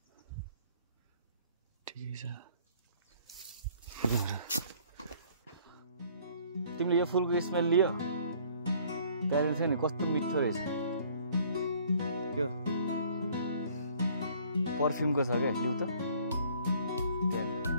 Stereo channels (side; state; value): both; inverted; correlation -0.57